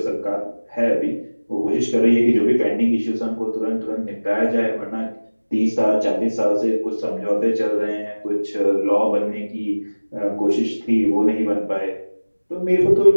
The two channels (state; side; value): inverted; both; correlation -1.00